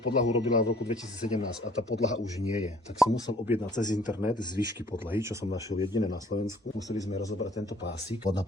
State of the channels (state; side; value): normal; both; correlation 0.56